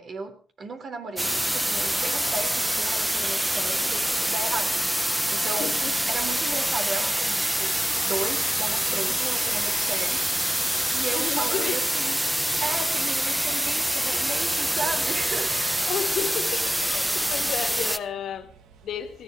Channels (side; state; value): both; normal; correlation 0.95